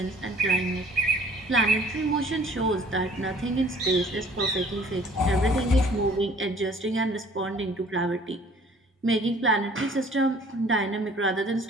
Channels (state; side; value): normal; both; correlation 0.54